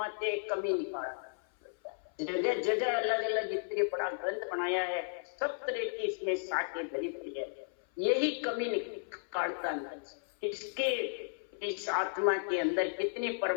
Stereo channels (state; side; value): silent; right; 55 dB below the other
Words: कमी निकालता है। जगह जगह अलग अलग इतने बड़ा ग्रंथ बनाया है, सब तरह की इसमें साके भरी पड़ी है, यही कमी निकालता है। इसके इस आत्मा के अंदर कितनी